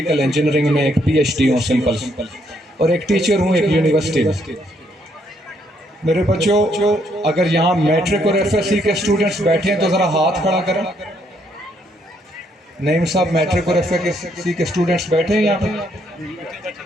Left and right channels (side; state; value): both; normal; correlation 0.71